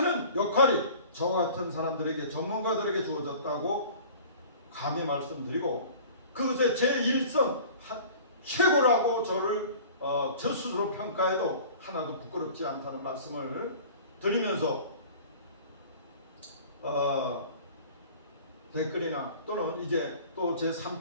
역할이 저 같은 사람들에게 전문가들에게 주어졌다고 감히 말씀드리고 그것의 제1선 최고라고 저를 저 스스로 평가해도 하나도 부끄럽지 않다는 말씀을 드리면서 댓글이나 또는 이제 또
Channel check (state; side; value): inverted; both; correlation -0.44